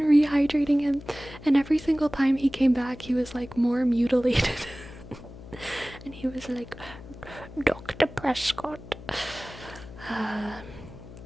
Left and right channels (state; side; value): noise; left; hum, 16 dB below the sound